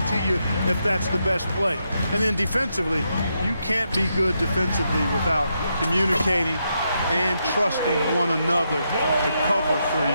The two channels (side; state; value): both; inverted; correlation -0.82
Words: to you if that's the best play. And then defensively, you can't be good defensively without communicating and trusting one another to cover for